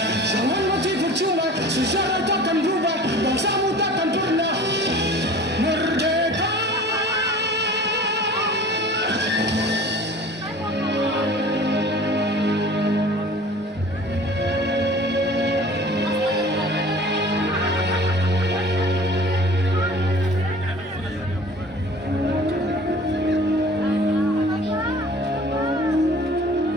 Jangan mati percuma, sejarah takkan berubah, bangsamu takkan pernah merdeka.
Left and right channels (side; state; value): both; normal; correlation 0.44